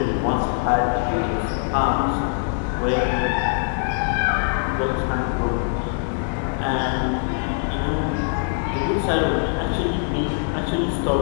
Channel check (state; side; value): silent; right; 64 dB below the other